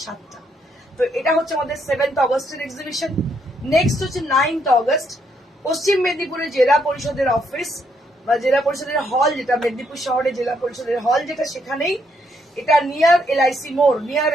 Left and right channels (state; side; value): normal; both; correlation 0.74